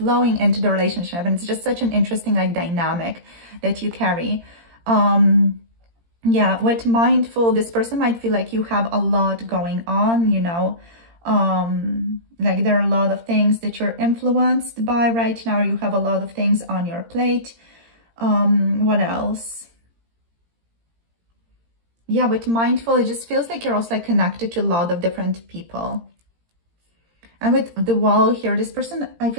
into the relationship. And it's just such an interesting like dynamic that you carry. Yeah, with mindful, this person might feel like you have a lot going on, you know, like there are a lot of things that you're influenced by right now. You have a lot of things on your plate. What else? Yeah, with mindful, it just feels like you're also like connected to a lot of different people. And with the wall here, this person, I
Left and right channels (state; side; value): late; left; 17 ms